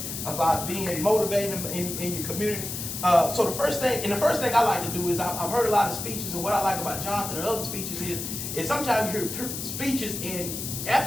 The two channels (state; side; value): noise; left; hiss, 6 dB below the sound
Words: about being motivated in your community. So the first thing I like to do is I've heard a lot of speeches, and what I like about Jonathan and other speeches is sometimes you hear speeches, and